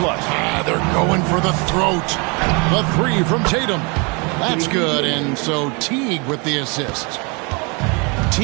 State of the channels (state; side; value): quieter; left; 31.1 dB